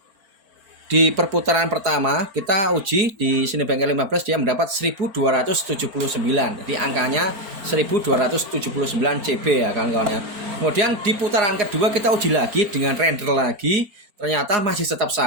di perputaran pertama kita uji di Cinebench R15 dia mendapat 1279. Jadi angkanya 1279 CB ya kawan-kawan ya. Kemudian di putaran kedua kita uji lagi dengan render lagi, ternyata masih tetap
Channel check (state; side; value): late; left; 4.4 ms